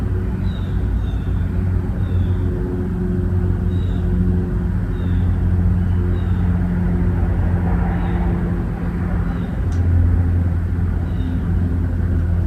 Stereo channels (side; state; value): both; identical; correlation 1.00